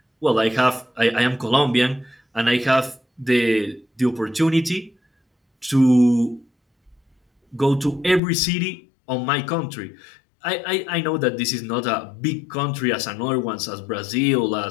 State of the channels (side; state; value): right; drops out; at 8.2 s